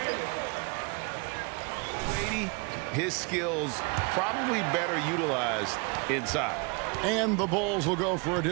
his skills probably better utilized inside. And the Bulls will go for a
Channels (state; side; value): quieter; left; 31.9 dB